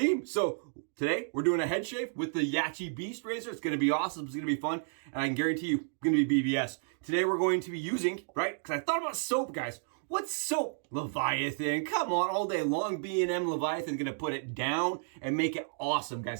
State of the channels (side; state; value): left; silent; digital silence